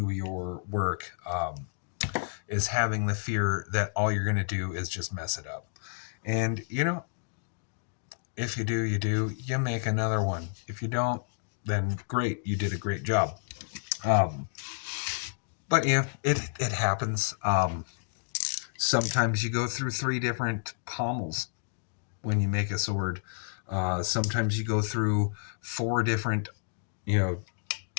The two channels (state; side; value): silent; right; digital silence